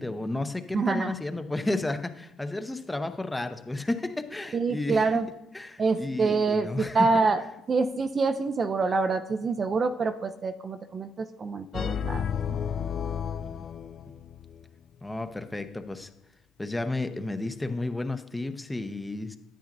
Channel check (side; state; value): both; normal; correlation 0.84